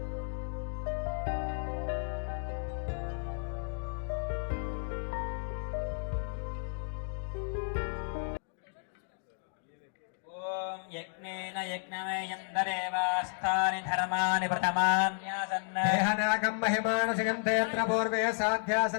ఓం యజ్ఞేన యజ్ఞమేయందరేవాస్తాని ధర్మాని ప్రథమాన్యాసన్న దేహనాగం మహిమానసికం తేత్ర పూర్వే సాధ్యా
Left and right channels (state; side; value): silent; right; digital silence